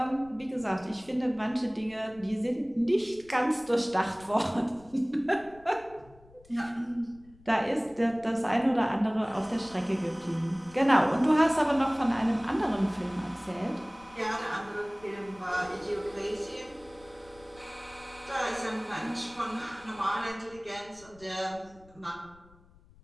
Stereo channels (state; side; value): noise; left; rumble, 25 dB below the sound